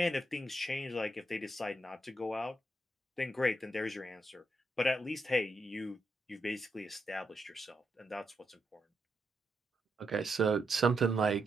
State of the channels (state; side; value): normal; both; correlation 0.82